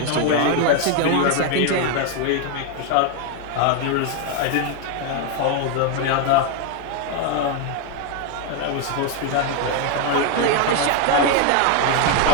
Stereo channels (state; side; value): different; both; correlation 0.01